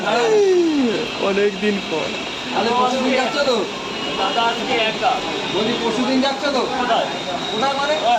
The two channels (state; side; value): identical; both; correlation 1.00